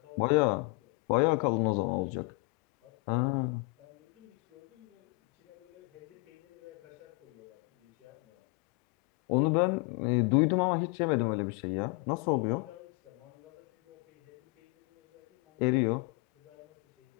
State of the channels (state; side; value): quieter; right; 27.8 dB